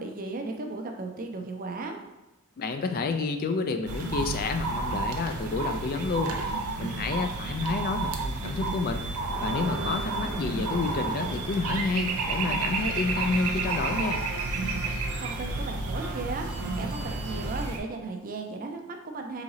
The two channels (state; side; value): normal; both; correlation 0.42